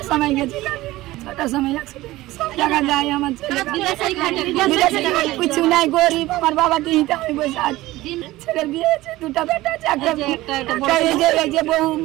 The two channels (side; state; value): left; quieter; 17.7 dB